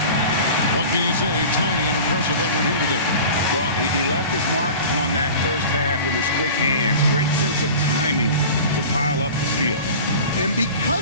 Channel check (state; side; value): inverted; both; correlation -0.38